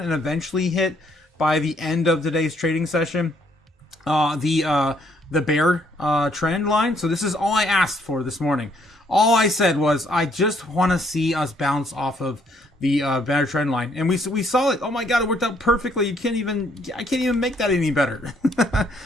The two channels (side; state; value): both; normal; correlation 0.68